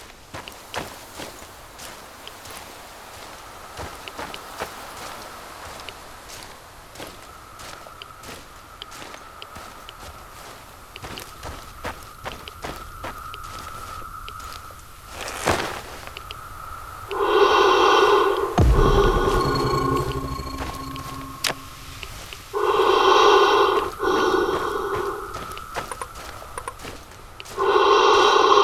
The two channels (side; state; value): both; identical; correlation 1.00